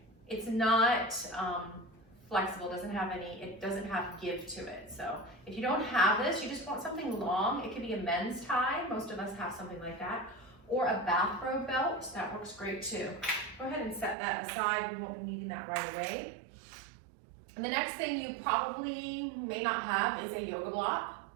It's not flexible, it doesn't have give to it. So if you don't have this, you just want something long. It could be a men's tie. Most of us have something like that. Or a bathrobe belt, that works great too. Go ahead and set that aside. We won't be needing that right away. And the next thing you probably may not have is a yoga block.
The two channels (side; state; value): left; drops out; at 14.2 s